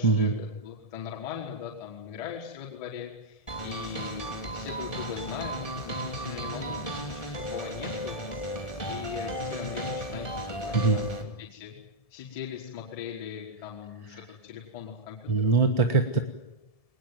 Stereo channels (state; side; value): late; right; 1.7 ms